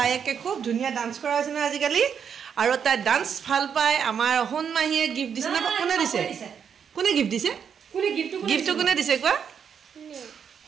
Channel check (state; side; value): quieter; left; 7.4 dB